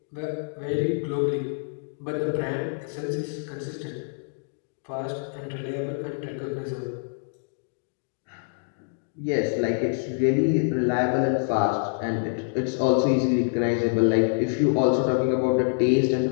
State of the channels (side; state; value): right; silent; digital silence